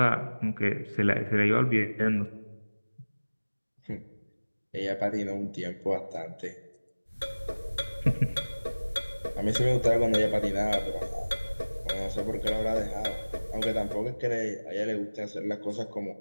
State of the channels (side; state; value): both; inverted; correlation -1.00